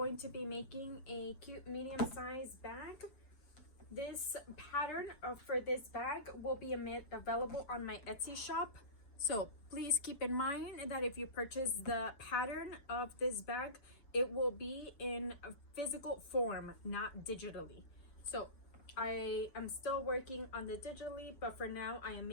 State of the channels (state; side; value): late; right; 7.0 ms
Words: to be making a cute medium-sized bag. This pattern for this bag will be available on my Etsy shop. So please keep in mind that if you purchase the pattern of this bag, it will be in a physical form, not digitally. So I am still working on the digitally, but for now I am